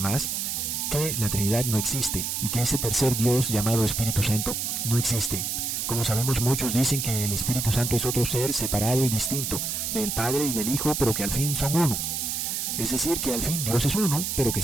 que la Trinidad no existe y que ese tercer Dios llamado Espíritu Santo no existe. Como sabemos, muchos dicen que el Espíritu Santo es otro ser separado y distinto del Padre y del Hijo, pero que al fin son uno. Es decir, que al fin Dios es uno, pero que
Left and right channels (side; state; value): right; noise; hiss, 2 dB below the sound